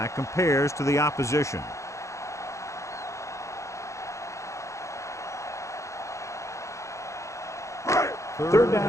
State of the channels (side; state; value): right; late; 0.15 ms